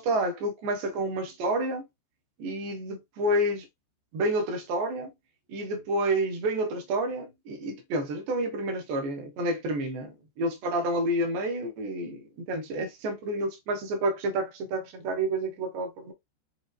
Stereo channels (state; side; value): late; left; 14 ms